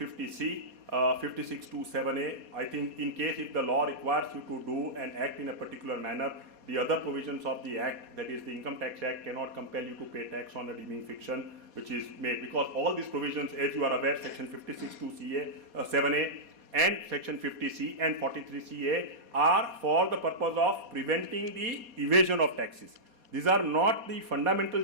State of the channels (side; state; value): left; late; 4.2 ms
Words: 56(2)(7)(a). I think in case if the law requires you to do and act in a particular manner, the other provisions of the Act, that is the Income Tax Act, cannot compel you to pay tax on a deeming fiction which is made, because all these provisions, as you are aware, section 56(2)(7)(a) and section 50(c) and 43(c)(a) are for the purpose of preventing the evasion of taxes. These are not the fundamental